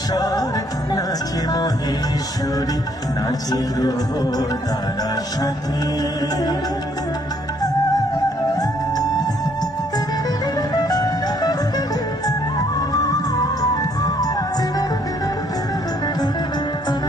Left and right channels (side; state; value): both; normal; correlation 0.66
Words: নাচে মহেশ্বরী, নাচে গ্রহ তারা সাথে।